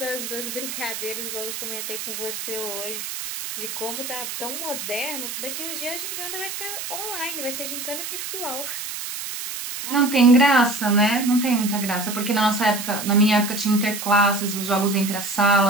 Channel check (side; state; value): right; noise; hiss, 7 dB below the sound